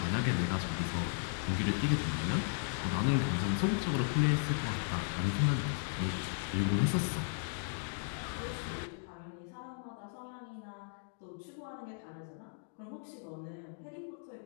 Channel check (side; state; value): right; silent; digital silence